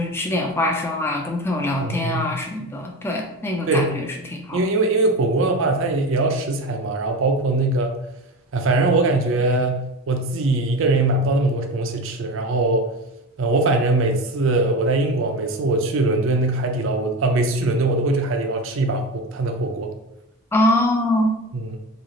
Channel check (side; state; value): both; normal; correlation 0.25